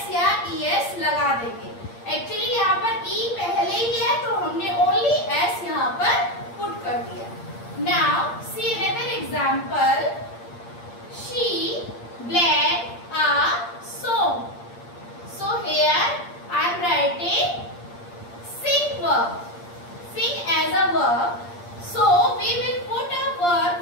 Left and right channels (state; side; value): late; right; 8.6 ms